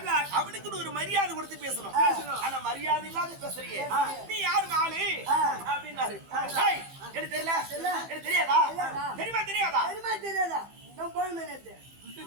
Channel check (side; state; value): left; late; 15 ms